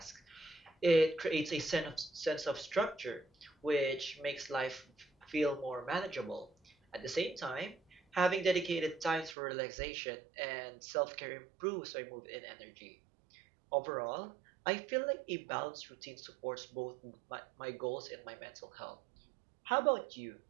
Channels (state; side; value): drops out; left; at 9.3 s